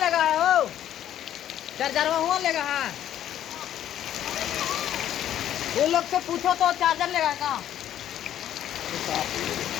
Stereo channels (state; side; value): quieter; right; 11.3 dB